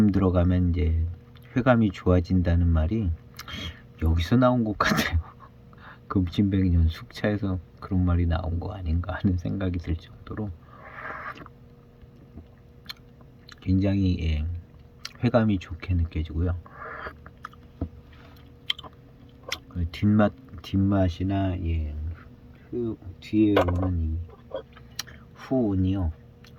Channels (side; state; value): both; identical; correlation 1.00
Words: 들어가면 이제 회감이 좋아진다는 말이 여기서 나온 것 같아요. 금침백년 숙차에서 그런 말이 나온 거 아닌가 하는 생각이 들 정도로 굉장히 회감이 좋게 느껴지고요. 뒷맛이나 뒤에 오는 이 후운이요.